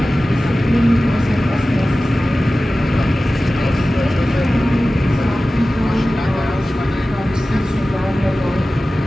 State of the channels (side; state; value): both; normal; correlation 0.96